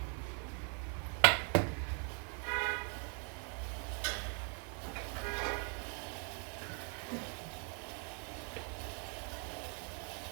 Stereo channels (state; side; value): quieter; left; 39.6 dB